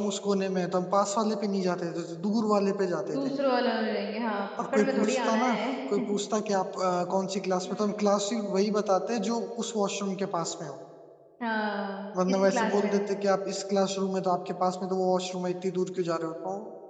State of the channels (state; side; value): identical; both; correlation 1.00